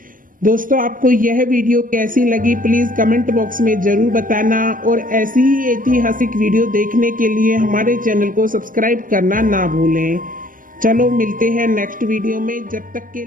दोस्तों, आपको यह वीडियो कैसी लगी प्लीज कमेंट बॉक्स में जरूर बताना, और ऐसी ही ऐतिहासिक वीडियो देखने के लिए हमारे चैनल को सब्सक्राइब करना ना भूलें। चलो मिलते हैं नेक्स्ट वीडियो में, जब तक के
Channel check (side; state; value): left; late; 0.40 ms